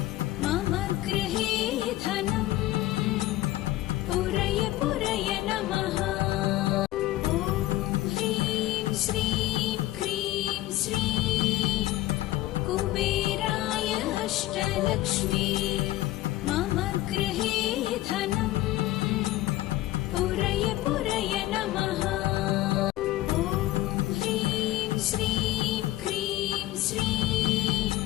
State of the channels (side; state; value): right; quieter; 16.2 dB